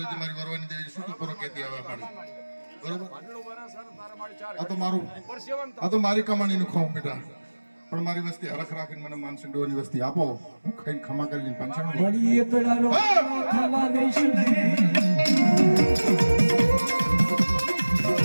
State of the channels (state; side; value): inverted; both; correlation -1.00